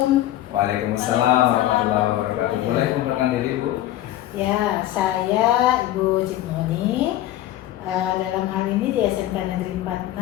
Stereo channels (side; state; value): right; quieter; 13.9 dB